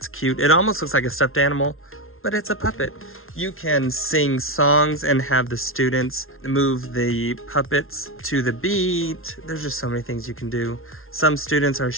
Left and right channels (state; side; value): late; right; 0.61 ms